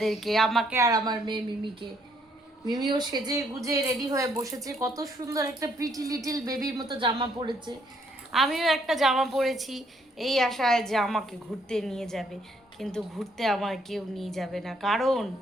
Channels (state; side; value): normal; both; correlation 0.69